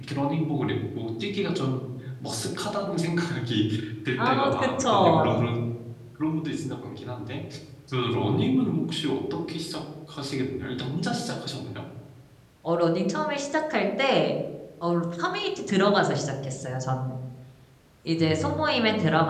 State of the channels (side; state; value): both; identical; correlation 1.00